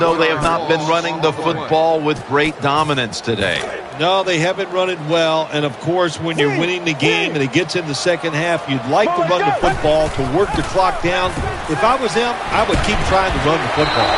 they have not been running the football with great dominance today. No, they haven't run it well, and of course, when you're winning the game and it gets in the second half, you'd like to run the football to work the clock down. If I was them, I would keep trying to run the football.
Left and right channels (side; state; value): both; identical; correlation 1.00